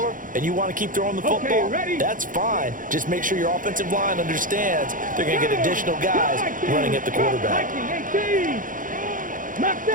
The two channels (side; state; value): left; late; 0.39 ms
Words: and you want to keep throwing the football, that's fine. Just make sure your offensive line understands they're going to get additional guys running at the quarterback. 19, 18.